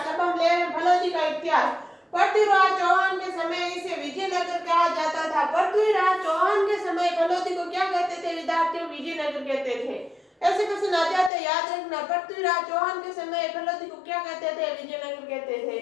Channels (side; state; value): right; drops out; at 11.3 s